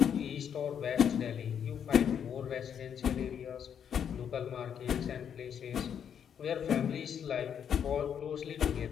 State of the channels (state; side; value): quieter; right; 8.3 dB